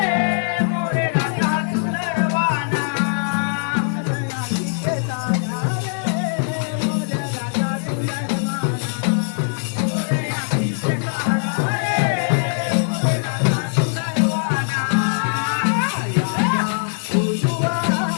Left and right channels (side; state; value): right; silent; digital silence